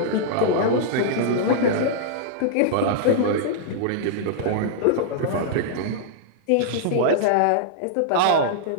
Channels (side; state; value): both; different; correlation -0.01